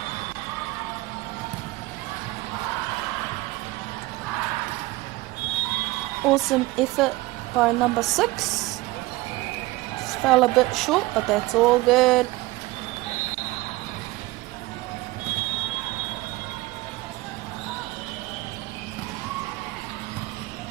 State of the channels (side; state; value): left; quieter; 20.1 dB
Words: Awesome effort by number 6. Just fell a bit short, but that's all good.